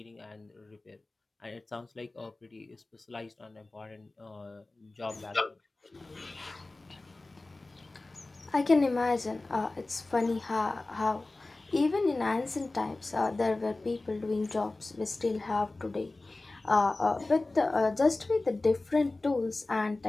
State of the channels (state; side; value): quieter; right; 3.1 dB